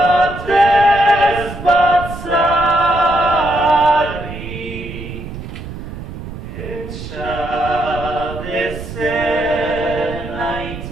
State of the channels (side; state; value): right; noise; rumble, 10 dB below the sound